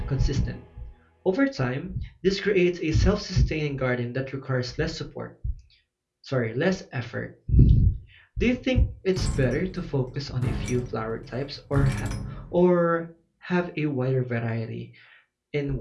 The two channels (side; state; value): both; identical; correlation 1.00